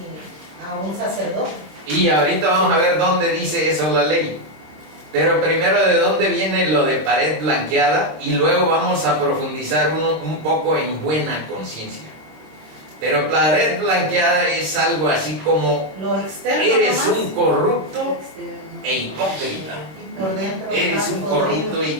a un sacerdote. Y ahorita vamos a ver dónde dice eso la ley. Pero primero, de dónde viene lo de pared blanqueada, y luego vamos a profundizar un poco en buena conciencia. Pero pared blanqueada es algo así como: Lo externo eres nomás, un corrupto Externo. e hipócrita. y por dentro Eres estás un podrido. corrupto e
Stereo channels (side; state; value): left; late; 26 ms